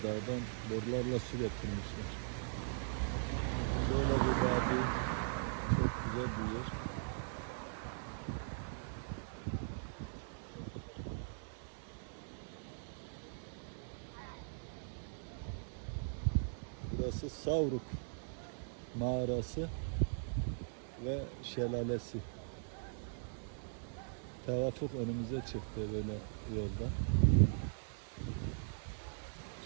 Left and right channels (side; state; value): left; silent; digital silence